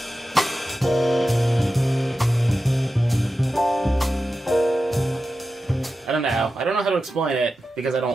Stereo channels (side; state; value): both; normal; correlation 0.92